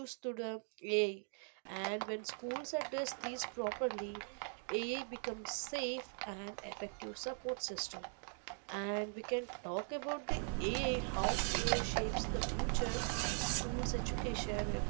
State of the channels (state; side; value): silent; left; 51 dB below the other